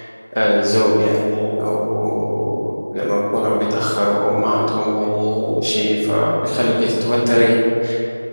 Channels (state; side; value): inverted; both; correlation -1.00